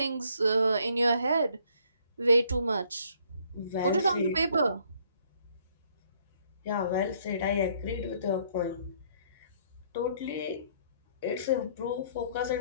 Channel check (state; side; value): inverted; both; correlation -0.65